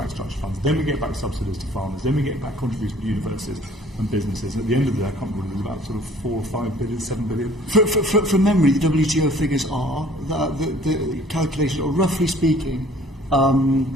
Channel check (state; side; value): normal; both; correlation 0.54